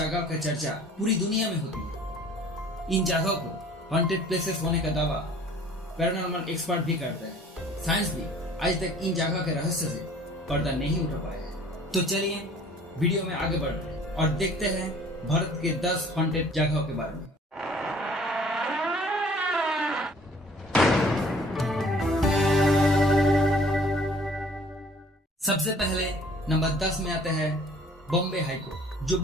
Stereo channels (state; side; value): normal; both; correlation 0.53